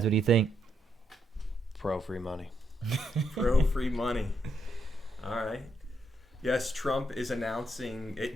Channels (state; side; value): normal; both; correlation 0.78